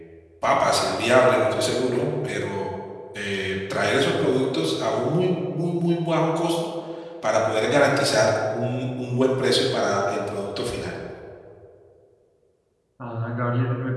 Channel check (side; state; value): both; identical; correlation 1.00